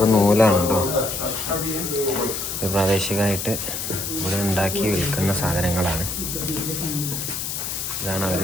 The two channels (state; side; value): noise; left; hiss, 4 dB below the sound